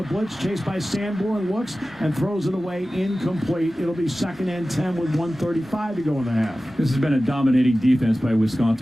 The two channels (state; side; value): normal; both; correlation 0.96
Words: blitz. Chased by Sanborn. Looks and throws it away. Incomplete. It'll be 2nd and 10 with 1:35 to go in the half. This has been a dominating defense by